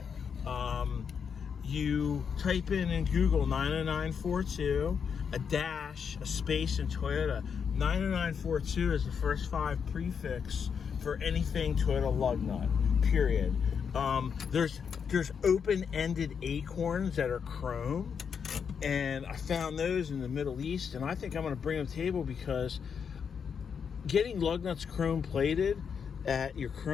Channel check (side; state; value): right; quieter; 6.8 dB